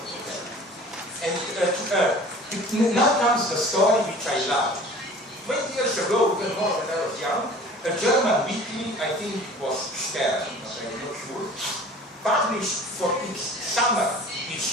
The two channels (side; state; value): both; normal; correlation 0.45